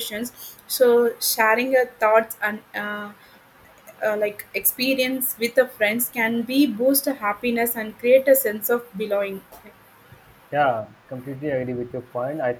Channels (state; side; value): identical; both; correlation 1.00